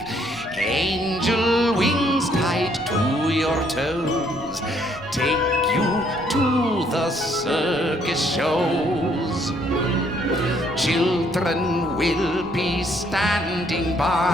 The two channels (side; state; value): both; normal; correlation 0.67